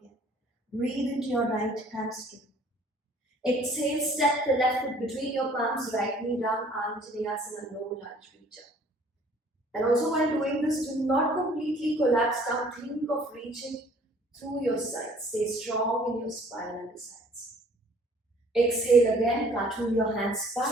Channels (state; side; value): normal; both; correlation 0.56